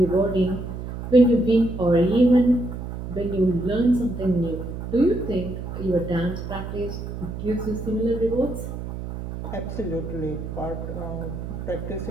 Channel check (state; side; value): noise; right; hum, 7 dB below the sound